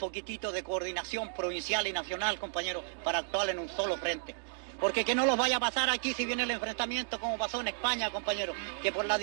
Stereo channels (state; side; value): silent; left; digital silence